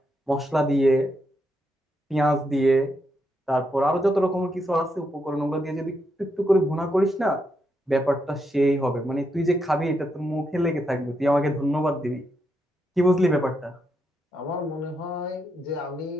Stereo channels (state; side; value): normal; both; correlation 0.81